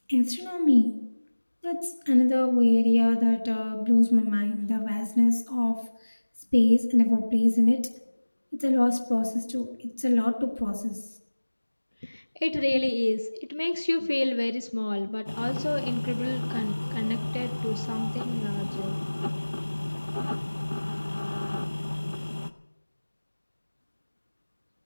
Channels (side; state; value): both; inverted; correlation -1.00